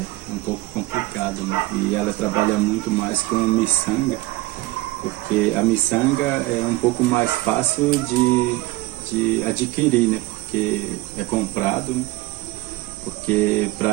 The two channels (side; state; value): left; quieter; 19.8 dB